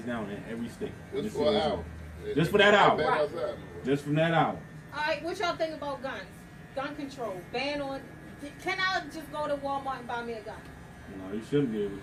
down in every state. Just for an hour. Just for that hour. Right. Outside. Just from that hour. All right, what y'all think about guns? Gun control, ban on. Can I just go to Walmart and buy me a gun? No, you shouldn't be able You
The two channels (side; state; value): both; identical; correlation 1.00